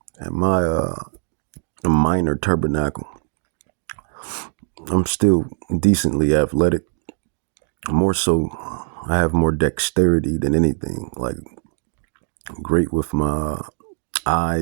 and my minor tabernacle, I'm still decently athletic. More so, I have more dexterity than anything. Like, great with my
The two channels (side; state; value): left; silent; digital silence